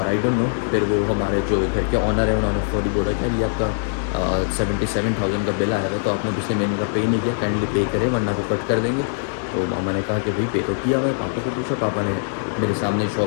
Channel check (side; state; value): right; silent; 57 dB below the other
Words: आई डोंट नो, फिर वो हमारे जो घर के ऑनर है उन्होंने फौरी बोला कि ये आपका 77,000 का बिल आया था, तो आपने पिछले महीने का पे नहीं किया, काइंडली पे करें वरना वो कट कर देंगे। तो मामा ने कहा कि भाई पे तो किया हुआ है। पापा को पूछा, पापा ने मेरे सामने